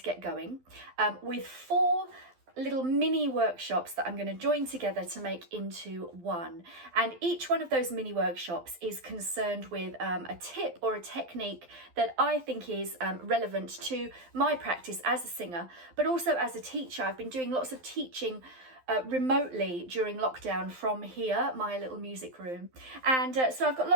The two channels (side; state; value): left; late; 12 ms